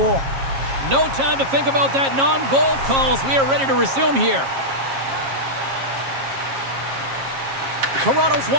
No time to think about that non-goal calls. We are ready to resume here. Toronto's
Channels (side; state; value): left; late; 7.4 ms